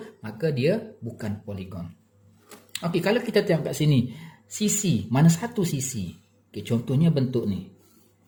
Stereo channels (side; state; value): both; identical; correlation 1.00